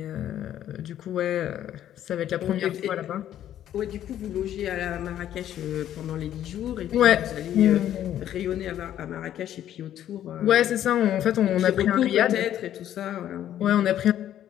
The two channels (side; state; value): right; quieter; 11.3 dB